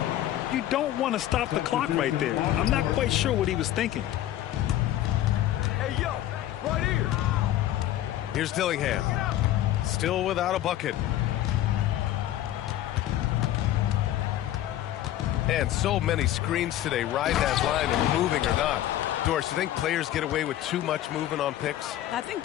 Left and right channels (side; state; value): right; quieter; 13.2 dB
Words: You don't want to stop the clock right there. I'm not quite sure what he was thinking. Hey, yo, right here. Here's Dillingham. Still without a bucket. And so many screens today. Ride that line and moving or not. Doris, you think players get away with too much movement on picks? I think,